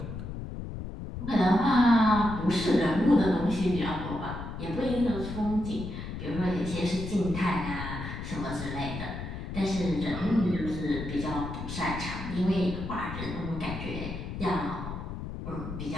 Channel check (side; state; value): left; noise; rumble, 7 dB below the sound